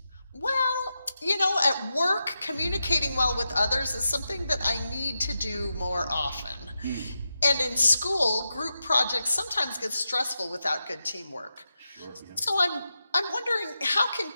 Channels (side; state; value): both; inverted; correlation -0.89